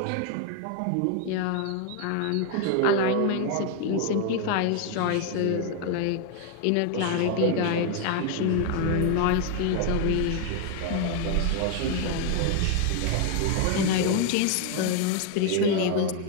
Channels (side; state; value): both; different; correlation 0.01